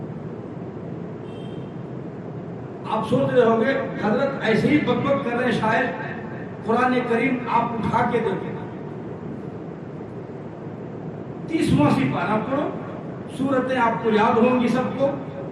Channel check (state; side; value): identical; both; correlation 1.00